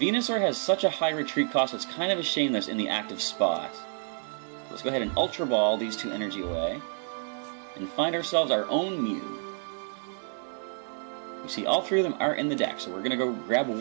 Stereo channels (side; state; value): left; silent; 58 dB below the other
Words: has such a high retreat cost, it's kind of a shame that it's in the active spot. Let's go ahead and Ultra Ball these 2 energy away, and find ourselves our own Mew. You see, all 3 of them are in the deck, so we're going to go grab